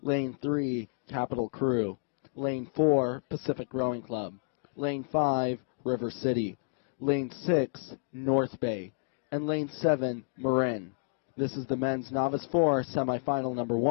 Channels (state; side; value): silent; right; digital silence